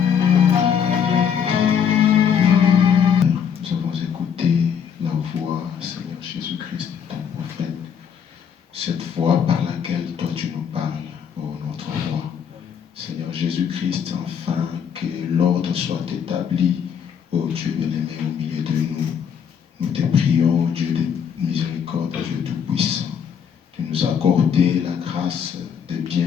Cette voix par laquelle toi tu nous parles, ô notre roi. Seigneur Jésus-Christ, enfin que l'ordre soit établi, ô Dieu bien-aimé, au milieu de nous. Nous te prions, ô Dieu de miséricorde, Dieu tout-puissant, de nous accorder la grâce de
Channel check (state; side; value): quieter; right; 7.7 dB